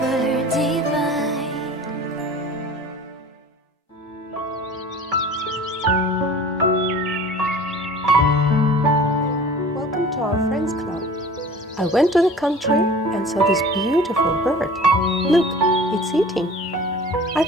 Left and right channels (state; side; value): normal; both; correlation 0.43